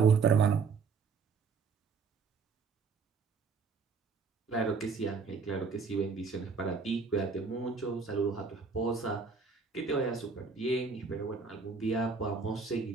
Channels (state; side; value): quieter; left; 5.0 dB